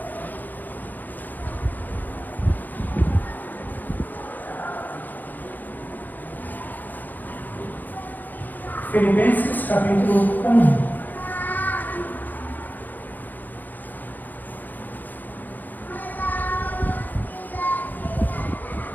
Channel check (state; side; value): late; right; 0.085 ms